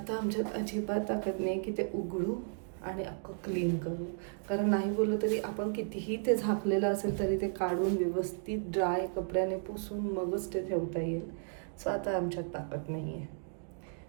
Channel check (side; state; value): left; silent; digital silence